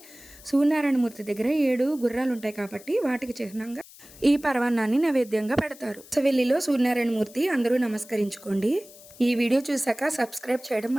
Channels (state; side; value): noise; left; hiss, 21 dB below the sound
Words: సూర్యనారాయణ మూర్తి దగ్గర 7 గుర్రాలు ఉంటాయి కాబట్టి వాటికి చిహ్నంగా ఈ పరమాన్నాన్ని నైవేద్యంగా పెడతారు. సవెల్లిలో సూర్యనారాయణ మూర్తి అందరూ నమస్కరించుకోండి. ఈ వీడియో చూసాక సబ్స్క్రైబ్ చేయడం